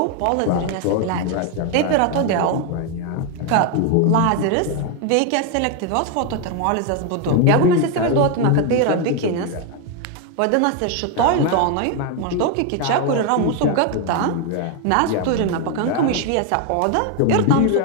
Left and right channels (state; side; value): different; both; correlation 0.01